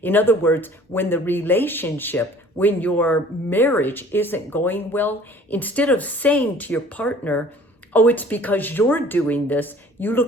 In other words, when the relationship, when your marriage isn't going well, instead of saying to your partner, oh, it's because you're doing this, you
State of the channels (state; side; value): normal; both; correlation 0.50